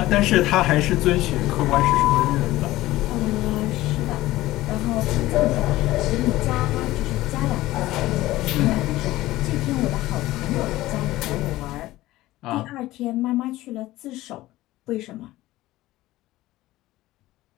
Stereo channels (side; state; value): right; quieter; 16.9 dB